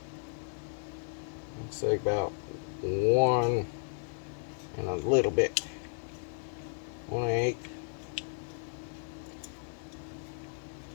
Looks like about 1 and a little bit. 1/8.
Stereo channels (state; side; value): silent; right; 55 dB below the other